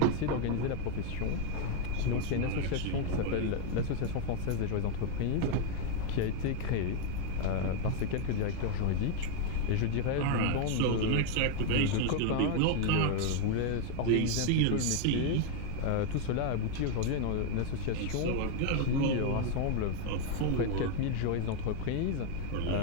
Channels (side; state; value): both; different; correlation 0.00